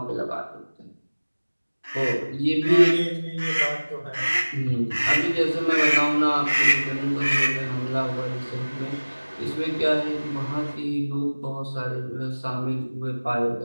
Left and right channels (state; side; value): inverted; both; correlation -1.00